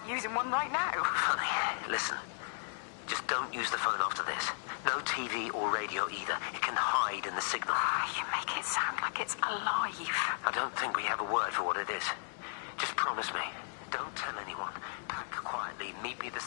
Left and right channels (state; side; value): silent; right; digital silence